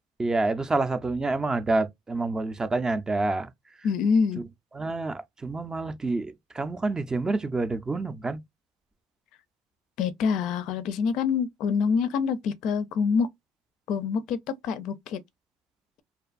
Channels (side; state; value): both; normal; correlation 0.77